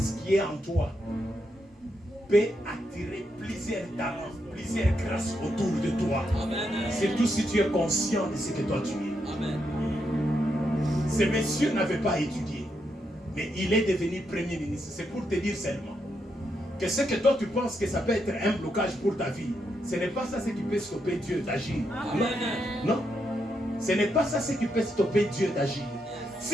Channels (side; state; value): both; normal; correlation 0.81